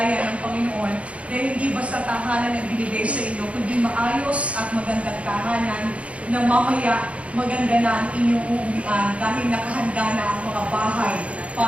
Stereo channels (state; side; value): late; left; 0.063 ms